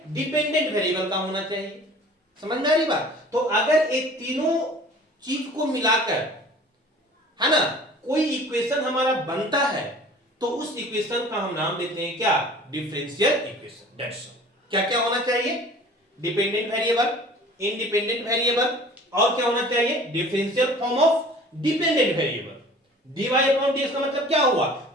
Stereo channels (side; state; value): both; normal; correlation 0.46